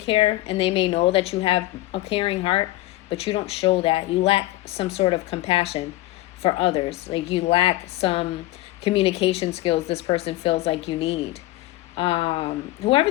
and they may know that you have a caring heart, but you don't show that. You lack some sort of compassion for others. Like, you lack some communication skills this person feels like you need. Whoever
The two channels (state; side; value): quieter; right; 17.4 dB